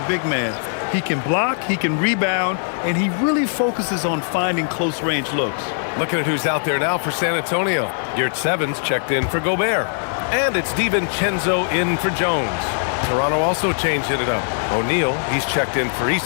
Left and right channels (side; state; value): right; silent; 61 dB below the other